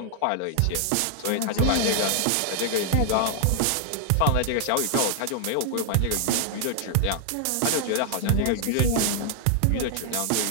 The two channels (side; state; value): both; different; correlation 0.00